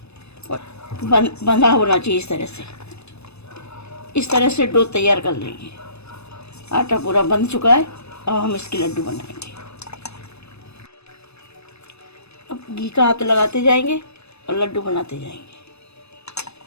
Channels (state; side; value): late; right; 0.80 ms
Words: और बंधा होना चाहिए इस तरह से। इस तरह से डो तैयार कर लेंगे। आटा पूरा बंध चुका है। अब हम इसके लड्डू बनाएंगे। अब घी का हाथ लगाते जाएंगे और लड्डू बनाते जाएंगे।